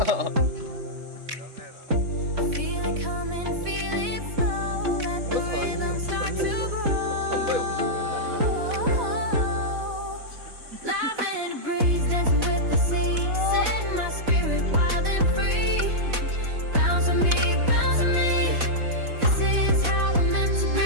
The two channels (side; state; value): left; late; 4.1 ms